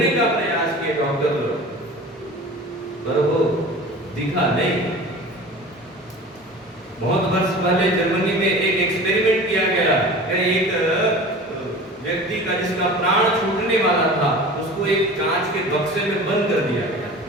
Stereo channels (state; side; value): normal; both; correlation 0.38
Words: का प्रयास किए डॉक्टर लोग, पर वो दिखा नहीं। बहुत वर्ष पहले जर्मनी में एक एक्सपेरिमेंट किया गया, एक व्यक्ति का जिसका प्राण छूटने वाला था, उसको एक कांच के बक्से में बंद कर दिया गया,